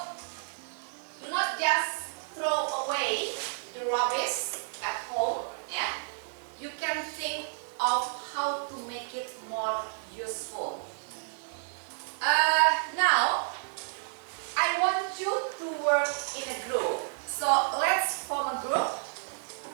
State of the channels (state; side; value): silent; left; digital silence